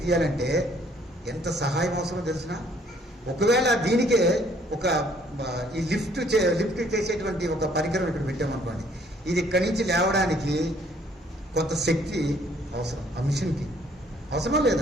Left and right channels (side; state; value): both; normal; correlation 0.62